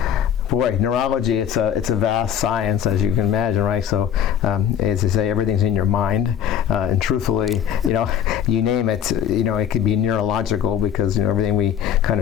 boy, neurology, it's a vast science, as you can imagine, right? So, as they say, everything's in your mind. And truthfully, you name it, it could be neurological because, everything we kind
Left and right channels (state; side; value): quieter; right; 9.1 dB